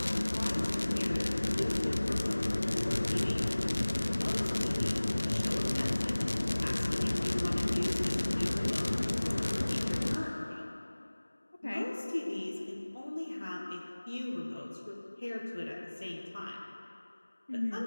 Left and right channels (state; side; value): inverted; both; correlation -1.00